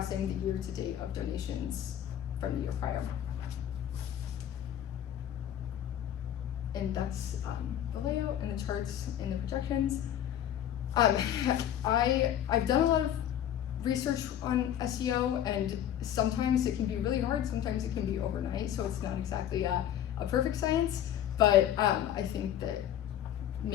the year to date of donations from the year prior. And that's the layout and the charts and the projections. I've done a lot of research on SEO, and sometimes it can be really hard, sometimes it can be overnight, so it's not exactly a perfect science, but I think that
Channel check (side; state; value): right; quieter; 10.7 dB